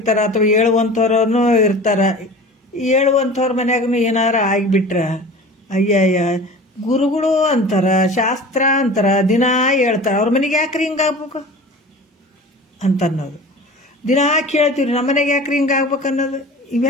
ಅಥವಾ ಹೇಳುವಂಥವ್ರೂ ಇರ್ತಾರ. ಹೇಳುವಂಥವ್ರ ಮನ್ಯಾಗೂ ಏನಾರ ಆಗಿಬಿಟ್ರ ಅಯ್ಯಯ್ಯ ಗುರುಗಳು ಅಂತಾರ, ಶಾಸ್ತ್ರ ಅಂತಾರ, ದಿನಾ ಹೇಳ್ತಾರ, ಅವ್ರ ಮನೆಗೆ ಯಾಕ್ರಿ ಹಿಂಗಾಗ್ಬೇಕು ಅಂತ ಅನ್ನೋದು. ದಿನಾ ಕೇಳ್ತೀವಿ ನಮ್ಮ ಮನೆಗೆ ಯಾಕ್ರಿ ಹಿಂಗಾಗ್ಬೇಕು ಅನ್ನೋದು.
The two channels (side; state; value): both; normal; correlation 0.38